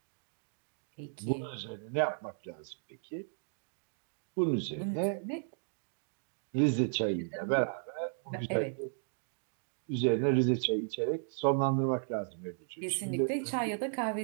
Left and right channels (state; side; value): silent; left; digital silence